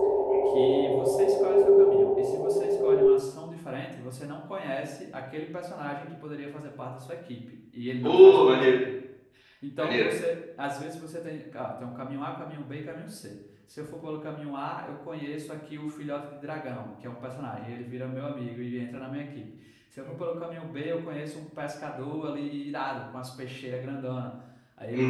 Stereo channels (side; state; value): both; identical; correlation 1.00